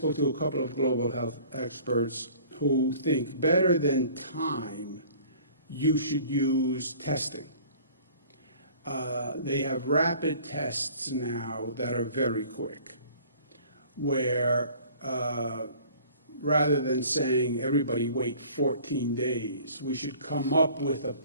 to a couple of global health experts who think better than time, you should use testing. They have rapid tests now that are very quick, where rather than saying everybody wait 14 days, we should come up with a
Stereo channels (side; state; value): both; inverted; correlation -0.50